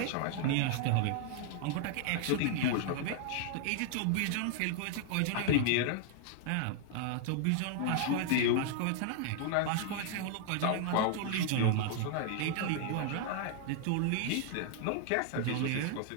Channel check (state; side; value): different; both; correlation 0.00